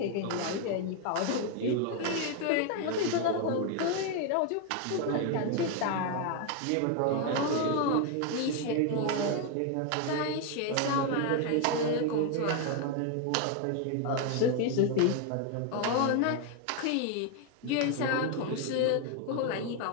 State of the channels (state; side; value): different; both; correlation 0.01